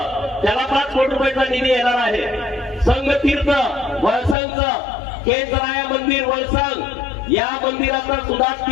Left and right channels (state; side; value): drops out; right; at 4.4 s